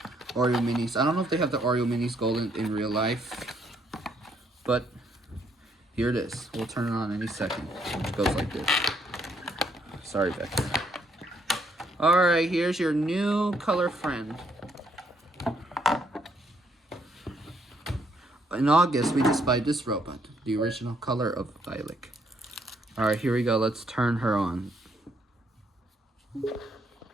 minis. I don't know if they have the Oreo minis golden in real life, but here it is. We'll turn it on any second. It goes like this. Sorry, Becky. All right, here's your new color friend. In August, we just buy this robot, the original color of Eilik. All right, here we go. Let's turn her on.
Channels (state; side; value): normal; both; correlation 0.71